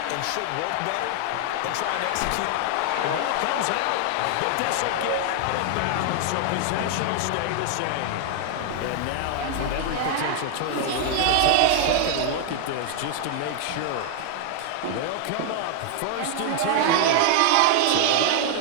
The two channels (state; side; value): different; both; correlation 0.00